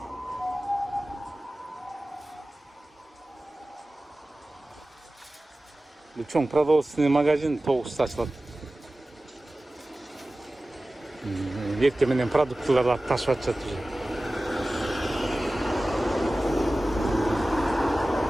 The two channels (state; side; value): normal; both; correlation 0.97